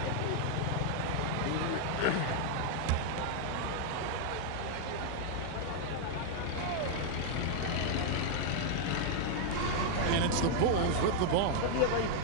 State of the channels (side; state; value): both; different; correlation 0.00